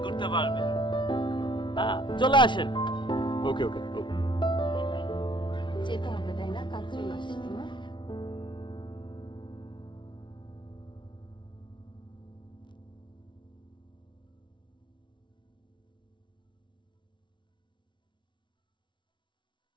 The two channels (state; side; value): late; right; 0.24 ms